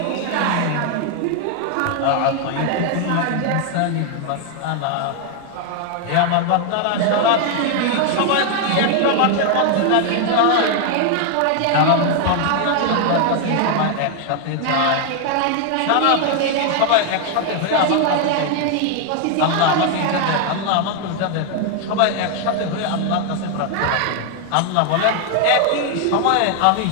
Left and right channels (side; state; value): both; different; correlation 0.00